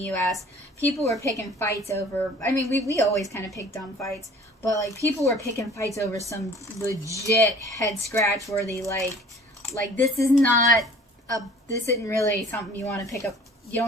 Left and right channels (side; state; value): both; normal; correlation 0.50